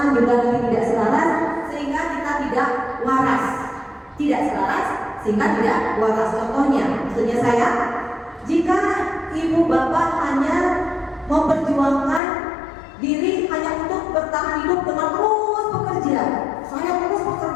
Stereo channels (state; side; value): drops out; right; at 12.2 s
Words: juga nanti tidak selaras, sehingga kita tidak waras. Tidak selaras sehingga tidak waras. Contohnya, maksudnya saya, jika ibu bapak hanya memperjuangkan diri hanya untuk bertahan hidup dengan terus bekerja, saya terus